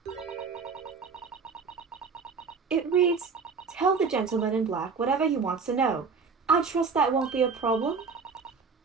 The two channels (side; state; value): left; quieter; 5.2 dB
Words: It reads, "Tell the gentleman in black whatever he wants to know. I trust that won't be a problem."